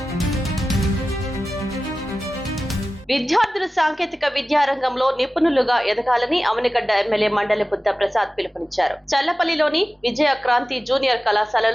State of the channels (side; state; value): both; normal; correlation 0.95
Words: విద్యార్థులు సాంకేతిక విద్యారంగంలో నిపుణులుగా ఎదగాలని అవనిగడ్డ ఎమ్మెల్యే మండలి బుద్ధ ప్రసాద్ పిలుపునిచ్చారు. చల్లపల్లిలోని విజయ క్రాంతి జూనియర్